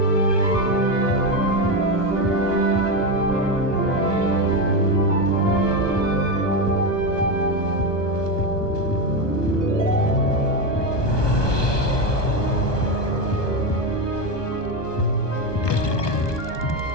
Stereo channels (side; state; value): right; late; 1.2 ms